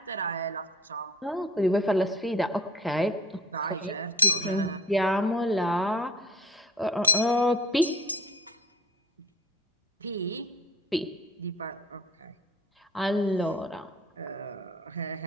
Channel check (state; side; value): normal; both; correlation 0.43